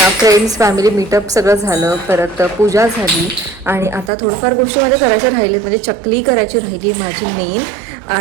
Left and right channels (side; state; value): left; drops out; at 4.1 s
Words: फ्रेंड्स फॅमिली मीटअप सगळं झालं, परत पूजा झाली आणि आता थोडंफार गोष्टी माझ्या करायच्या राहिले, म्हणजे चकली करायची राहिली माझी मेन,